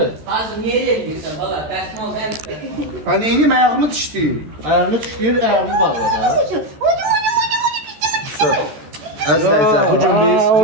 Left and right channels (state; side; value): late; left; 13 ms